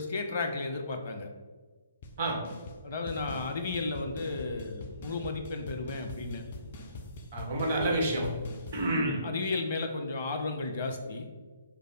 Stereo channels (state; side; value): inverted; both; correlation -0.63